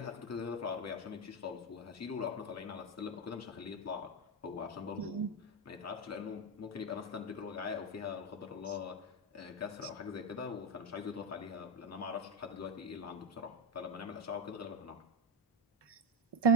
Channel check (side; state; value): both; normal; correlation 0.11